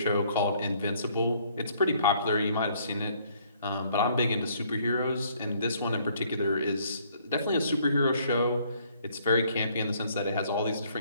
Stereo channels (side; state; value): both; inverted; correlation -0.64